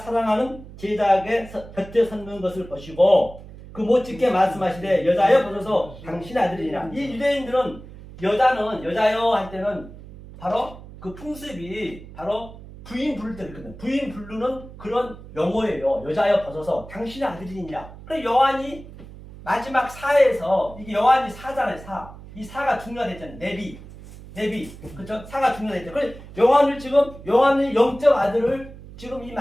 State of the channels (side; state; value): right; noise; hum, 16 dB below the sound